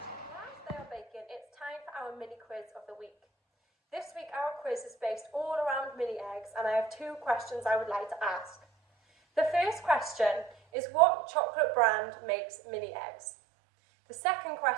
Whilst they are baking, it's time for our mini quiz of the week. This week our quiz is based all around mini eggs, and I have 2 questions I would like to ask. The first question is, what chocolate brand makes mini eggs? The second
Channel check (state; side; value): drops out; left; at 10.6 s